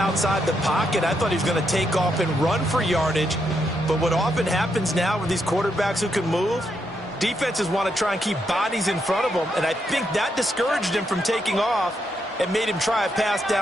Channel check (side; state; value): both; normal; correlation 0.80